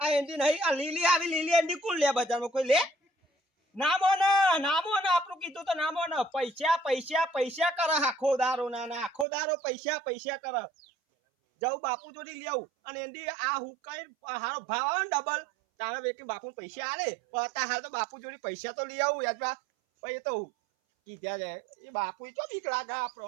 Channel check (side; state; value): left; drops out; at 9.2 s